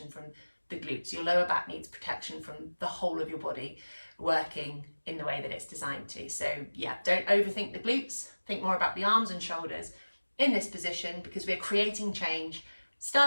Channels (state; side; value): inverted; both; correlation -1.00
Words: from the glutes. Your lower back needs protection from the whole of your body working in the way that it's designed to. So yeah, don't overthink the glutes. Think more about the arms and shoulders in this position, because we're creating change,